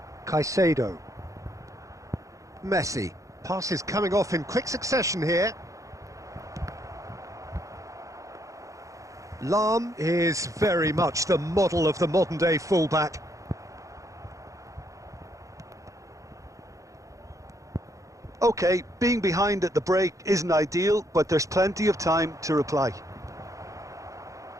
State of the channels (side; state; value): left; late; 0.16 ms